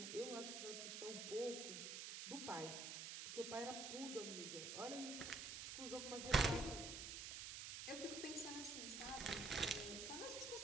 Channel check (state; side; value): noise; right; hiss, 5 dB below the sound